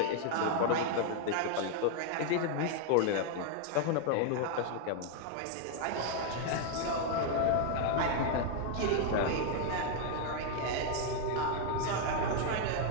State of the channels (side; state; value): both; different; correlation 0.00